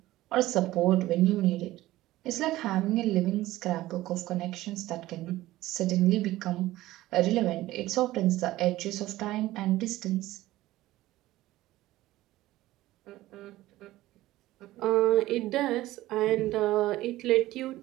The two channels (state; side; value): quieter; left; 16.4 dB